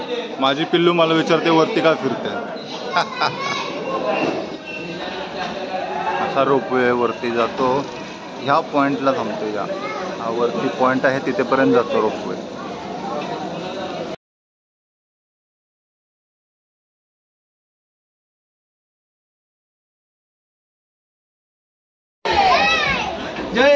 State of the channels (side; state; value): both; identical; correlation 1.00